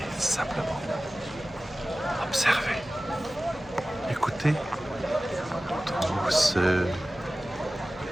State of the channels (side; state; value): left; noise; hum, 24 dB below the sound